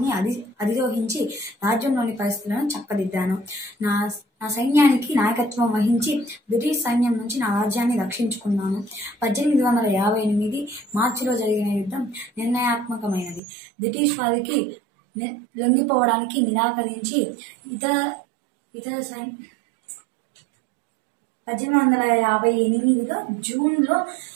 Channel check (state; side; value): drops out; left; at 13.4 s